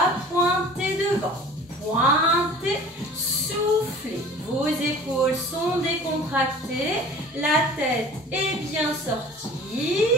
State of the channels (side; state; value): both; normal; correlation 0.44